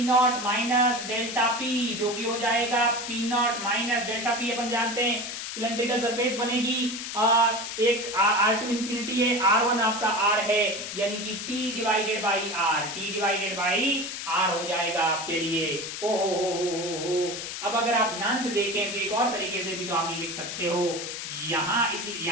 माइनस डेल्टा P, जो कि हो जाएगा P0 माइनस डेल्टा P। अपन जानते हैं सिलेंड्रिकल सरफेस बनेगी। और एक R2 इंफिनिटी है, R1 आपका R है, यानी कि T divided by R, T divided by R हो जाएगा आपके लिए। ओ हो। अब अगर आप ध्यान से देखें तो एक और तरीके से भी तो आप लिख सकते हो,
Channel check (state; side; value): noise; left; hiss, 6 dB below the sound